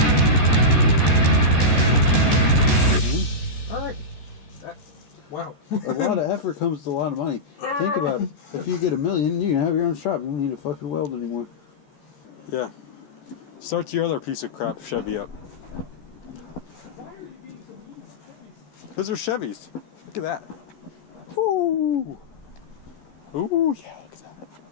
All right. Wow. A lot of effort comes to a lot of money. Think about it. If you get $1 million, you can have your own shop. You don't need a fucking weld anymore. Yeah. Start your other piece of crap Chevy up. Why are you being so mean about Chevys? Those are Chevys. Look at that. Ooh. Ooh, yeah, look at that.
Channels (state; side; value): late; right; 14 ms